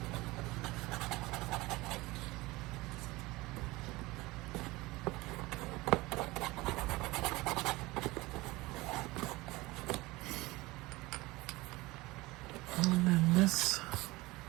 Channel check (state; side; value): quieter; left; 21.1 dB